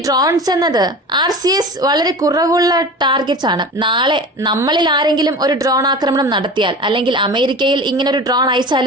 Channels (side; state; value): both; normal; correlation 0.34